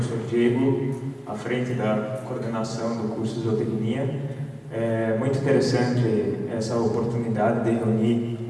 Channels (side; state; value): both; identical; correlation 1.00